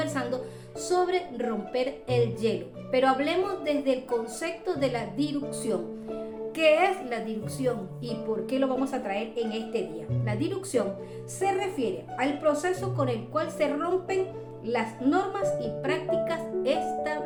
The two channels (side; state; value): both; identical; correlation 1.00